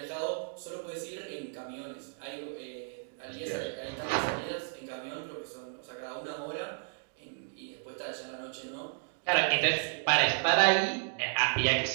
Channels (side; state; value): left; silent; digital silence